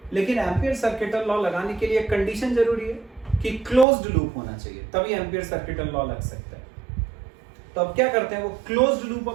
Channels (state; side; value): drops out; left; at 3.9 s